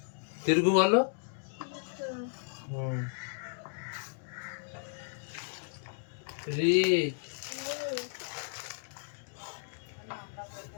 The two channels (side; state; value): right; silent; digital silence